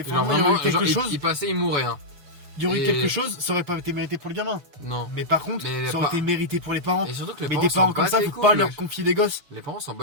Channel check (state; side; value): late; left; 6.7 ms